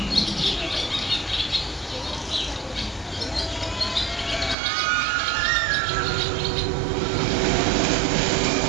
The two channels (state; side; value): drops out; left; at 4.5 s